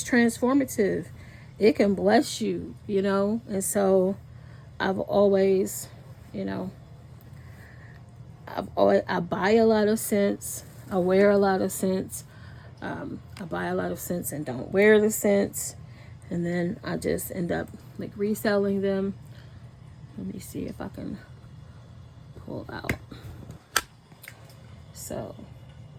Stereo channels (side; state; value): both; identical; correlation 1.00